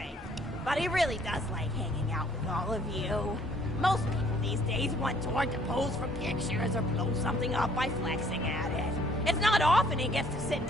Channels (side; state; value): both; normal; correlation 0.61